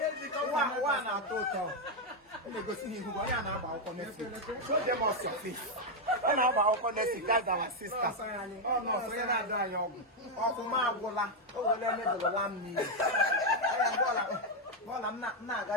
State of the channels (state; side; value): normal; both; correlation 0.02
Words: One out total. Let me go see who I am about connecting. Show them us your face. I'm about connecting. That's our sister. Oh no, so you're not dying. Oh, for my bola. Oh, let me do the lamb. Well, I'm not